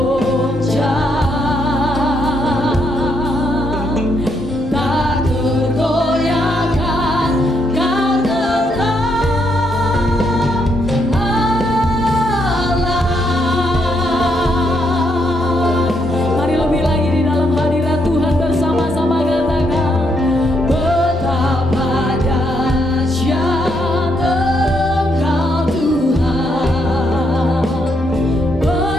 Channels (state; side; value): normal; both; correlation 0.76